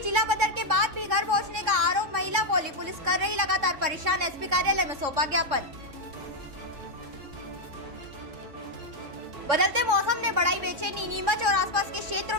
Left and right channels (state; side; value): late; left; 3.6 ms